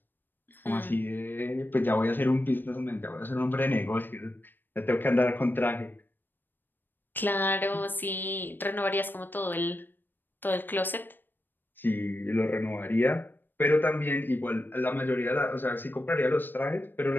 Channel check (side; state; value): right; late; 0.094 ms